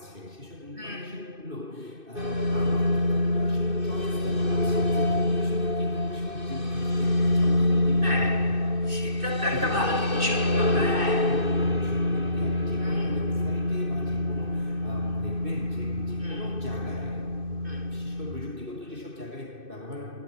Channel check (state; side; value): late; left; 2.6 ms